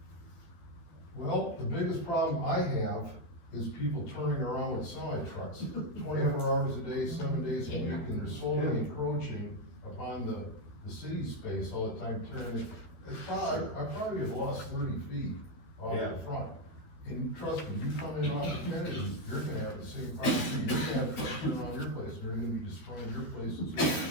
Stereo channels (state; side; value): late; right; 12 ms